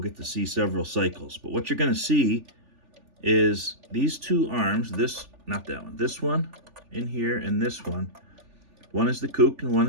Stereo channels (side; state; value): left; late; 3.4 ms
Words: get to see several cycles. But what you're going to see is these two arms, not that one, this one in here and this one. One is the cook and one